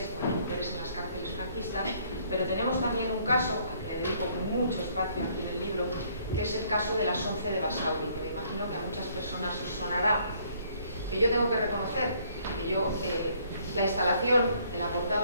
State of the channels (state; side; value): inverted; both; correlation -0.64